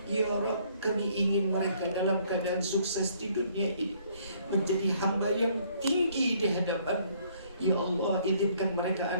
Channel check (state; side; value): inverted; both; correlation -0.64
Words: Ya Rabb, kami ingin mereka dalam keadaan sukses di dunia ini, menjadi hamba yang tinggi di hadapan-Mu. Ya Allah, izinkan mereka